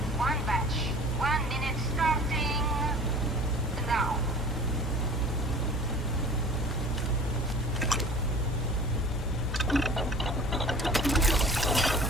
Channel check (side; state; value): both; normal; correlation 0.44